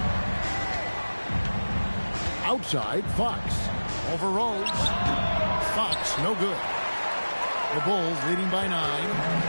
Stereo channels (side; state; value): both; inverted; correlation -1.00